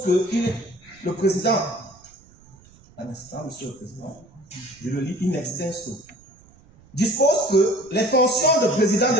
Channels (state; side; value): noise; right; rumble, 27 dB below the sound